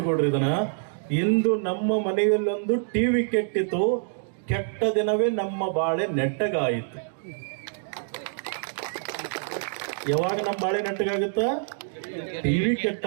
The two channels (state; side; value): silent; left; digital silence